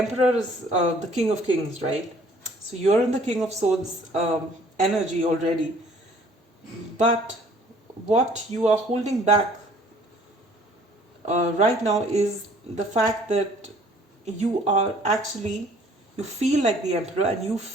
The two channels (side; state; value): both; normal; correlation 0.56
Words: is the King of Kings, right? So you're in the King of Swords energy already. But what you are holding back right now is the fact that you feel like the Emperor, and you